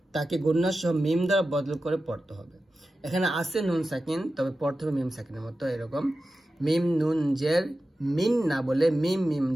তাকে গুণনা সহ মিম দ্বারা বদল করে পড়তে হবে এখানে আছে নুন সাকিন তবে পড়তে হবে মিম সাকিনের মতো এরকম মিম নুন জের মিন না বলে মিম মিম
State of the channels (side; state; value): both; normal; correlation 0.93